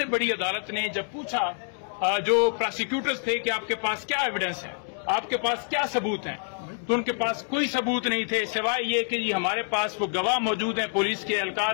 बड़ी अदालत ने जब पूछा जो प्रोसिक्यूटर्स थे कि आपके पास क्या एविडेंस है, आपके पास क्या सबूत हैं, तो उनके पास कोई सबूत नहीं थे सिवाय ये कि हमारे पास वो गवाह मौजूद हैं पुलिस के एहलकार।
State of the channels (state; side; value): silent; right; 55 dB below the other